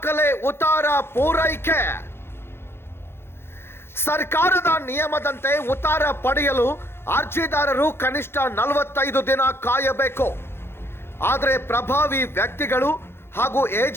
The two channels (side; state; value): right; late; 0.11 ms